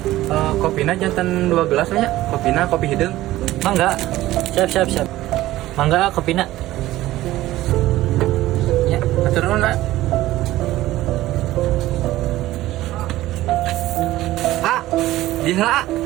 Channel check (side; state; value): left; quieter; 16.0 dB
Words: Kopina jantan 2 gelas nya. Kopina kopi hidung. Mangga, siap. Mangga, kopina. Ya, atur nuhun, Nak. Di heula,